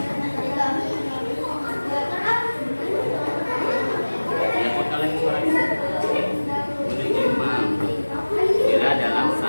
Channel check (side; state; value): both; inverted; correlation -1.00